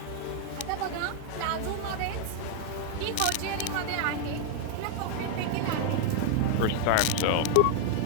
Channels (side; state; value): both; different; correlation -0.01